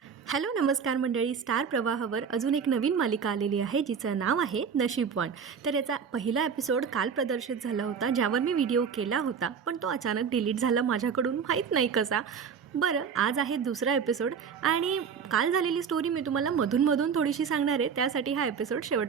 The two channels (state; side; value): quieter; left; 6.6 dB